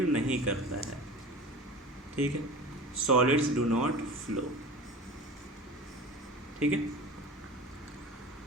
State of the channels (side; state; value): both; normal; correlation 0.35